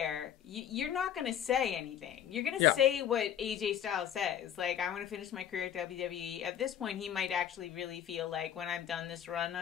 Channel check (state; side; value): quieter; right; 9.8 dB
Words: you're not going to say anything. You're going to say what AJ Styles says. Like, I want to finish my career at WWE. At this point, he might actually really feel like, when I'm done this run,